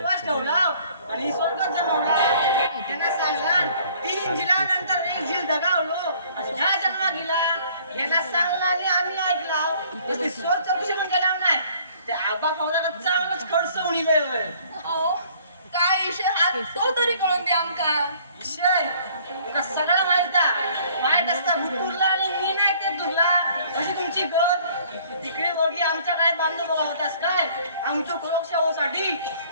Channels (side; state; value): both; inverted; correlation -0.57